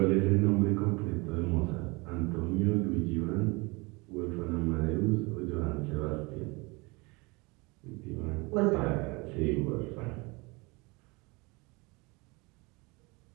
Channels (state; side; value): quieter; left; 26.3 dB